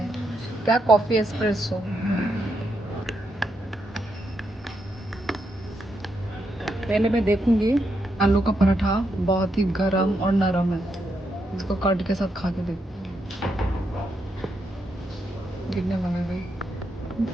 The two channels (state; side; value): normal; both; correlation 0.81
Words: क्या कॉफी एस्प्रेसो। पहले मैं देखूंगी। आलू का पराठा बहुत ही गरम और नरम है। इसको कर्ड के साथ खा के देख। गिरने लगा भाई।